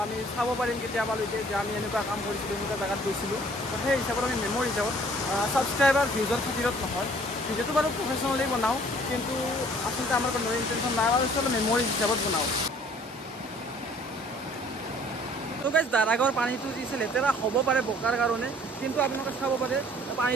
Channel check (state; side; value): normal; both; correlation 0.55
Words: আমি চাব পাৰিম কেতিয়াবা লৈকে যে আমি এনেকুৱা কাম কৰিছিলোঁ এনেকুৱা জেগাত গৈছিলোঁ তো সেই হিচাপত আমি মেমৰি হিচাপত ছাবস্ক্ৰাইবাৰ ভিউজৰ খাতিৰত নহয় ভিডিঅ'টো বাৰু প্ৰফেশ্যনেলি বনাওঁ কিন্তু আচলতে আমাৰ কোনো ইণ্টেনশ্যন নাই আৰু আচলতে মেমৰি হিচাপত বনাওঁ তো গাইজ দাৰাগাঁৱৰ পানীটো যি আছে লেতেৰা হ'ব পাৰে বোকাৰ কাৰণে কিন্তু আপোনালোকে চাব পাৰে